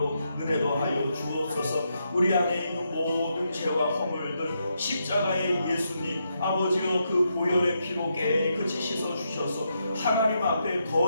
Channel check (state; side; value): inverted; both; correlation -0.81